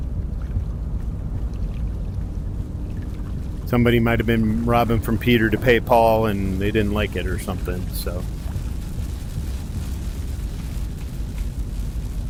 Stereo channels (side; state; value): both; identical; correlation 1.00